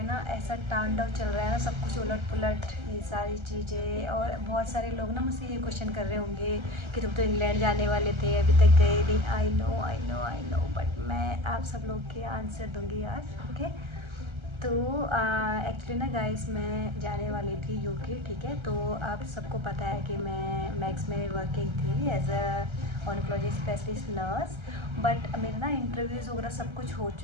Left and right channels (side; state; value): left; late; 1.3 ms